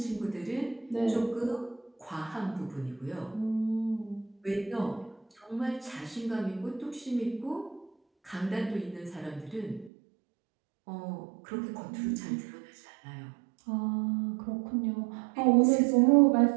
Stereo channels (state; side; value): drops out; left; at 9.9 s